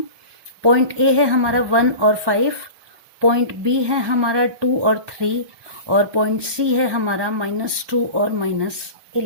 पॉइंट ए है हमारा 1 और 5, पॉइंट बी है हमारा 2 और 3 और पॉइंट सी है हमारा -2 और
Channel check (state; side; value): late; left; 1.2 ms